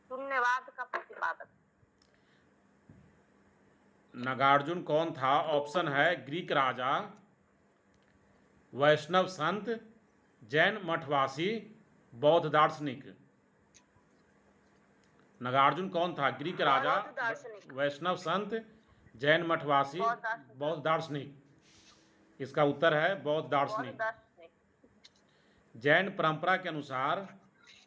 शून्यवाद का प्रतिपादक। नागार्जुन कौन था? ऑप्शन है ग्रीक राजा, वैष्णव संत, जैन मठवासी, बौद्ध दार्शनिक। नागार्जुन कौन था? ग्रीक राजा, वैष्णव संत, जैन मठवासी, बौद्ध दार्शनिक। इसका उत्तर है बौद्ध दार्शनिक। जैन परंपरा के अनुसार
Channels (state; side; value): identical; both; correlation 1.00